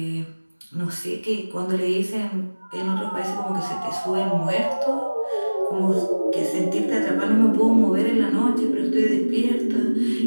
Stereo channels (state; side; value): inverted; both; correlation -1.00